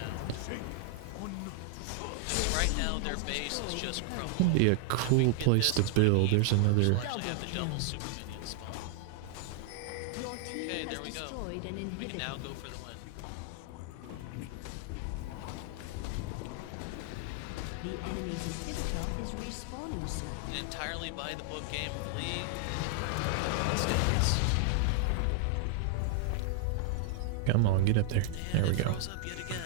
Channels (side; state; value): both; different; correlation 0.00